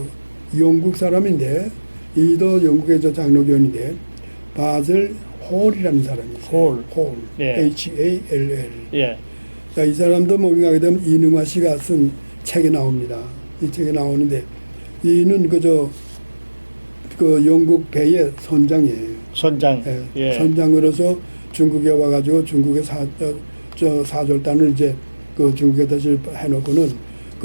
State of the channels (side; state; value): both; inverted; correlation -1.00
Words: 영국 사람인데 이도 영국의 저 장로교인인데 바젤 홀이라는 사람이 있어요. 홀. 예. Hall. 예. 자, 이 사람도 뭔가 하게 되면 이능화 씨가 쓴 책에 나옵니다. 이 책에 나오는데 이는 그 영국 배의 선장이에요. 선장. 예. 예. 선장으로서 중국에 와가지고 중국의 사절단을 이제 그 중국에 다시 해놓고는